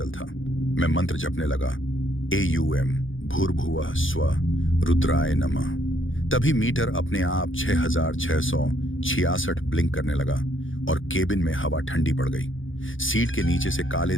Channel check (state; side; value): late; right; 0.57 ms